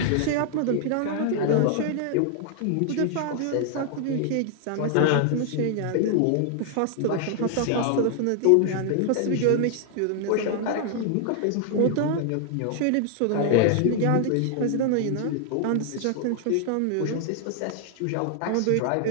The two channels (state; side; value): different; both; correlation 0.00